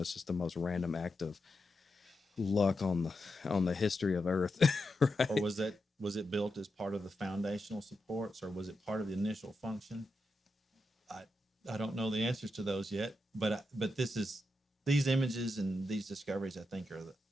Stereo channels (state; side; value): normal; both; correlation 0.87